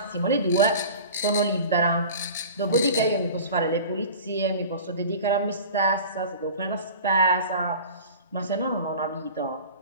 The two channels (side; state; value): both; inverted; correlation -0.39